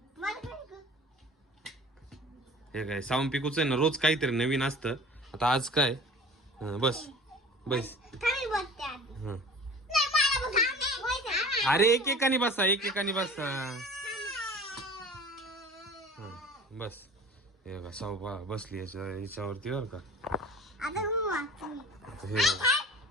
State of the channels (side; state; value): both; normal; correlation 0.43